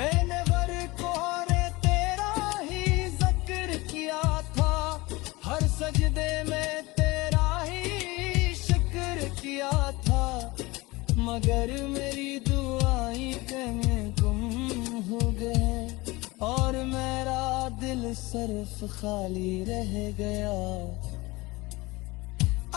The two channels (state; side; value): quieter; right; 22.1 dB